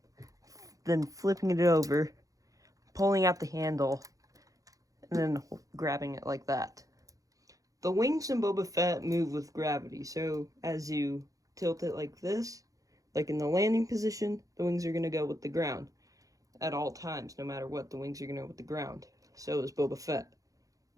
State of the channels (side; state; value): left; late; 0.17 ms